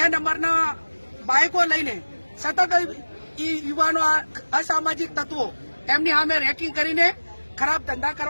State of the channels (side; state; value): both; inverted; correlation -1.00